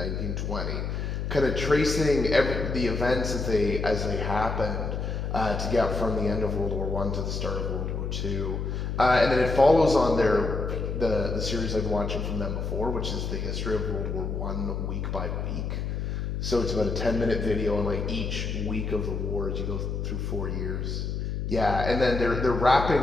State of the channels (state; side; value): noise; left; hum, 3 dB below the sound